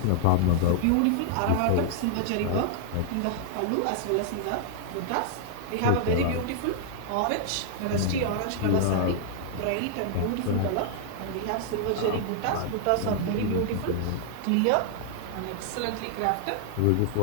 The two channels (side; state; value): both; different; correlation 0.00